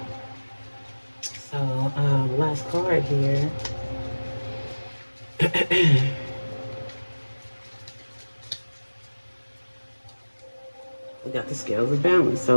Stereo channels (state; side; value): inverted; both; correlation -1.00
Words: So, last card here. We got the scales of balance.